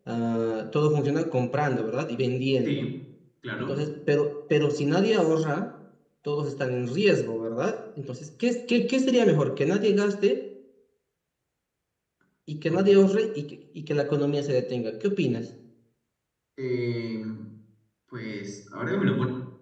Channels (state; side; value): identical; both; correlation 1.00